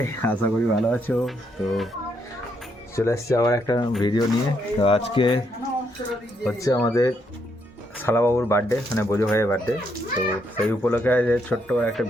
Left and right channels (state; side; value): normal; both; correlation 0.76